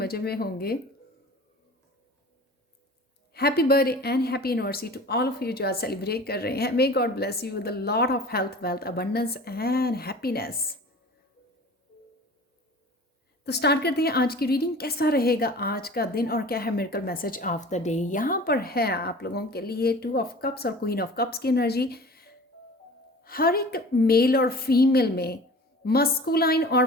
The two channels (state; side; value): normal; both; correlation 0.41